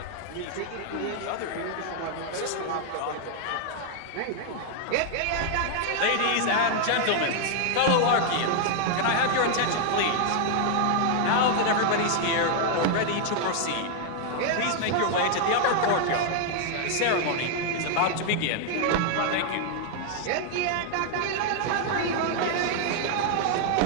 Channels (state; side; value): different; both; correlation 0.00